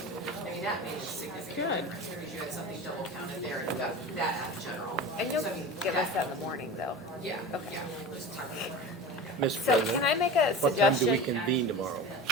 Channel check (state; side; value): normal; both; correlation 0.32